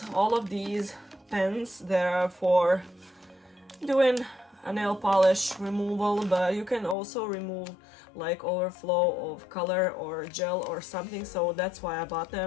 all of these pens that are for doing a nail polish removal, but you can also remove like overflow of color or gel or something, so that's why I bought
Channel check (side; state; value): right; drops out; at 7.0 s